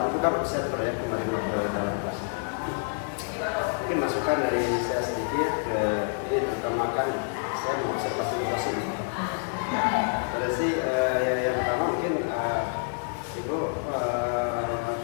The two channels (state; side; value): silent; right; 60 dB below the other